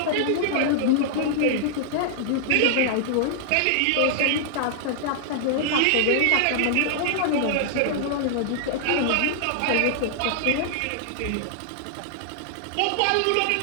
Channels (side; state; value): both; different; correlation -0.01